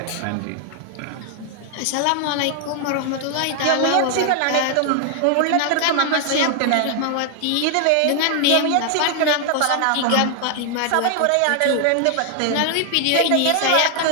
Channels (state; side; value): different; both; correlation 0.00